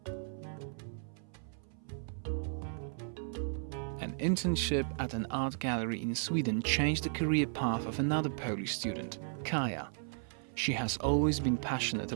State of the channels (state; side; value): silent; left; 54 dB below the other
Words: An internship at an art gallery in Sweden changed the career path of another Polish student, Kaja. She has always been passionate